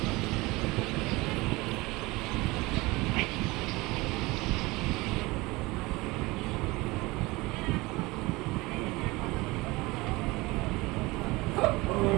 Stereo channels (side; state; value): left; quieter; 22.3 dB